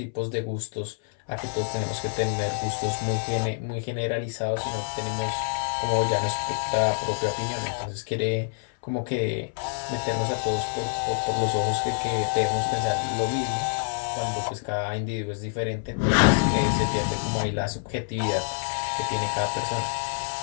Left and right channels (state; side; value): silent; right; 60 dB below the other